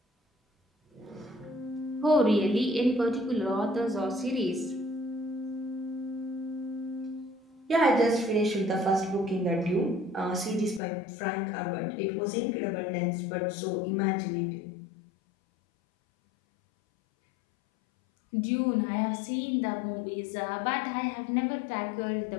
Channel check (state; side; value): drops out; right; at 10.8 s